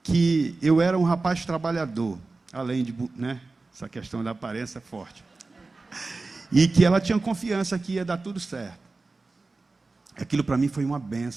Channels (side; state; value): left; quieter; 3.6 dB